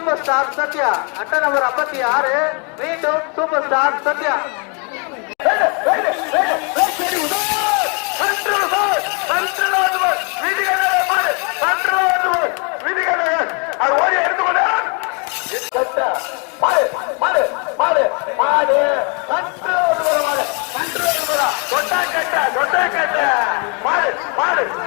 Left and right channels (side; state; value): right; quieter; 35.6 dB